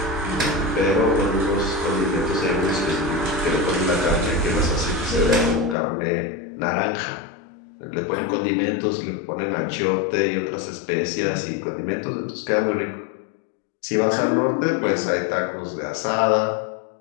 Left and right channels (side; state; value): right; drops out; at 5.8 s